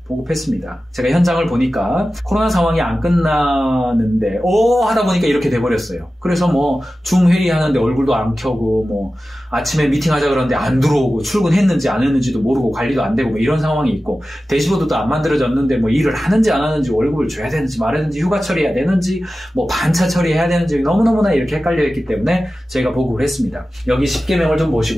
제가 현장을 보니까 코로나 상황이 안 끝나는데 하다 보니까 이렇게 돼버렸어요. 그래서 줌 회의하는데 얼굴도 안 켜고 아침에 미팅하자 그러는데 안 들어오고 출근했는지 안 했는지도 모르고 관리도 안 되고 이런 상황이 있고 대시보드도 안 만들어졌는데 일을 하는지 안 하는지 월급을 줘야 되는지 말아야 되는지 휴가 처리해야 되는지 반차 처리해야 되는지 너무너무나 이렇게 헷갈려 있기 때문에 저희가 보급을 했습니다. 여기 10개명을 좀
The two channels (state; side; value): normal; both; correlation 0.95